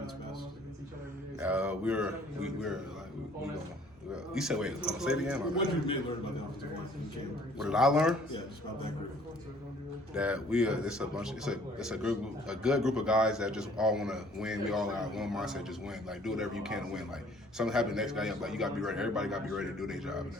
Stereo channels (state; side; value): normal; both; correlation 0.56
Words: its best. You said wait, say it again. What did you really learn about the offensive line in camp? What did I learn? Yeah, just about that group. That it's a good group of guys that just all want to win. We all got one mindset, just win. Like do whatever you can to win. Like something happen next guy, like you got to be ready. Everybody got to be ready to do their job and